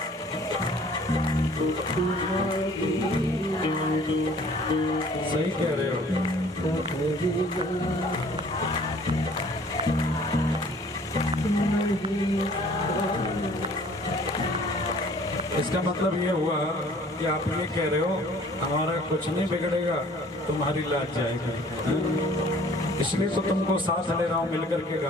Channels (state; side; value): normal; both; correlation 0.53